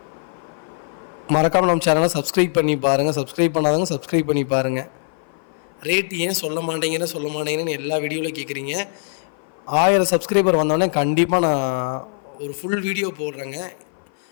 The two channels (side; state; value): right; silent; 57 dB below the other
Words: மறக்காமல் நம்ம சேனலை சப்ஸ்கிரைப் பண்ணி பாருங்கள். சப்ஸ்கிரைப் பண்ணாதவங்க சப்ஸ்கிரைப் பண்ணி பாருங்கள். ரேட் ஏன் சொல்ல மாட்டேங்கன்னு எல்லா வீடியோவிலும் கேட்குறீங்க. 1000 சப்ஸ்கிரைபர் வந்தோடனே கண்டிப்பாக நான் ஒரு ஃபுல் வீடியோ போடுறேங்க.